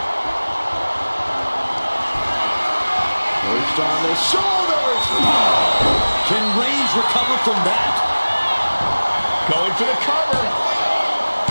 Perched on the shoulders. Can Reigns recover from that? Going for the cover.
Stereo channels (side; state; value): both; inverted; correlation -1.00